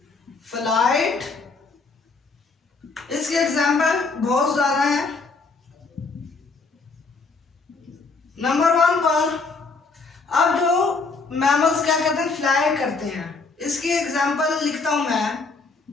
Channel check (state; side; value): quieter; right; 4.2 dB